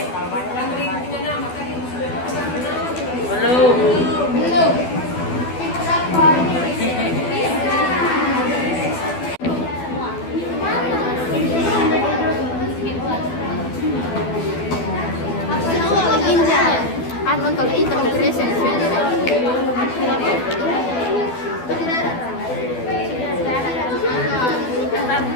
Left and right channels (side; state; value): right; late; 12 ms